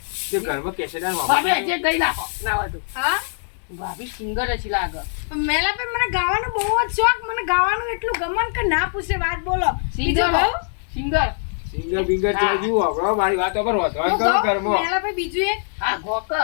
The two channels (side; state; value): right; silent; digital silence